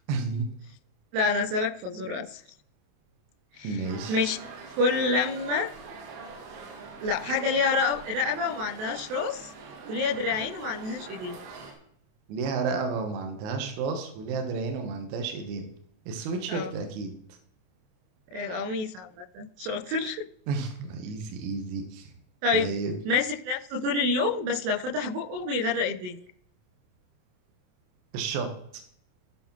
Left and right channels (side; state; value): left; late; 28 ms